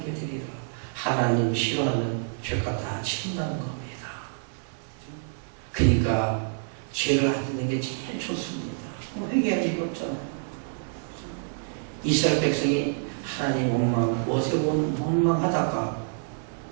되리라. 하나님 싫어하는 죄값 다 치른다는 겁니다. 그러니까 죄를 안 짓는 게 제일 좋습니다. 회개할 일이 없잖아요. 이스라엘 백성이 하나님 원망, 모세 원망하다가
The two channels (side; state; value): left; silent; digital silence